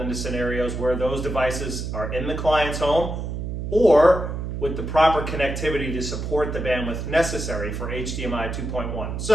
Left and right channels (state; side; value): noise; right; hum, 4 dB below the sound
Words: scenarios where those devices are in the client's home or with the proper connectivity to support the bandwidth necessary for HDMI 2.1.